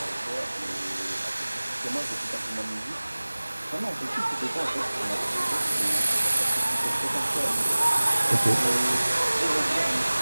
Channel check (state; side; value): inverted; both; correlation -1.00